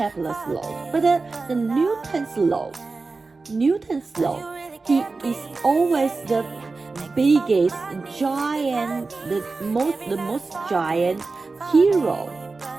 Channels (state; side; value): quieter; left; 3.9 dB